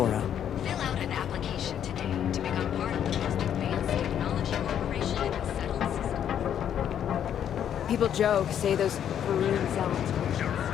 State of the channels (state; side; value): quieter; right; 9.5 dB